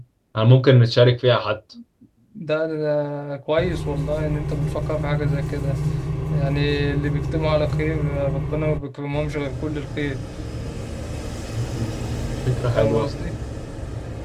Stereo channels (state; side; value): identical; both; correlation 1.00